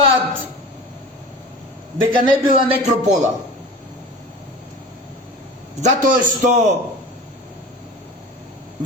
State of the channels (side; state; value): both; normal; correlation 0.36